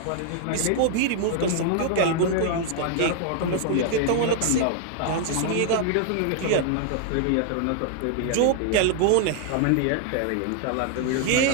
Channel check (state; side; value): different; both; correlation 0.00